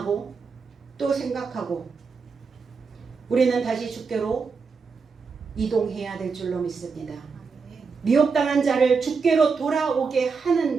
또 생각하고 우리는 다시 주께로 이동해야 될 줄로 믿습니다. 미혹당한 자를 주께로 돌아오게 하는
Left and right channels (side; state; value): left; quieter; 5.1 dB